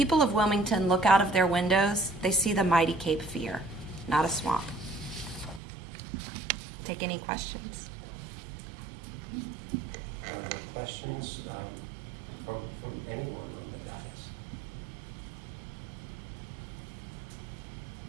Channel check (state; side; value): drops out; left; at 5.6 s